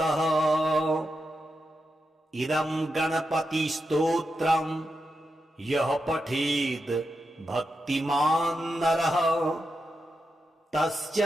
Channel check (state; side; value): normal; both; correlation 0.87